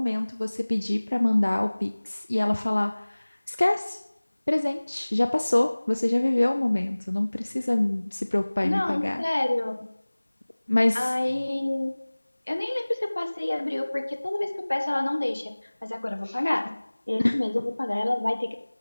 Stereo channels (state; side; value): inverted; both; correlation -1.00